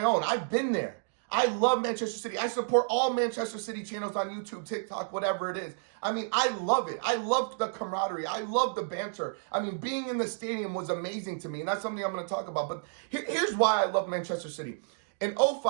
own. I've been there. I love Manchester City. I support all Manchester City channels on YouTube, TikTok, whatever it is. I mean, I love it. I love the camaraderie. I love the banter. I mean, being in the stadium was amazing to me, and that's something I'm going to talk about. But here's why I love Manchester City. In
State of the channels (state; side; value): silent; left; digital silence